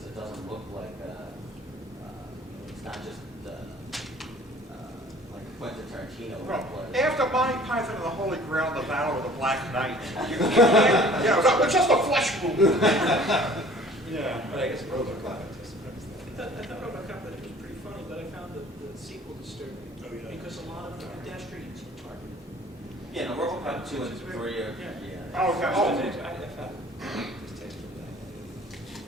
it doesn't look like it's not just like Quentin Tarantino. Well, after Monty Python and the Holy Grail, the Battle of the Black Knight, you can't, it's just a flesh wound. Yeah, but I guess RoboCop just I thought RoboCop that it was pretty funny, but I found the sequel disturbing because a lot of the pedestrians were targeted. Yeah, no, RoboCop 2 and 3 are, Yeah. Oh, okay. I found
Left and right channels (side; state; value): both; normal; correlation 0.51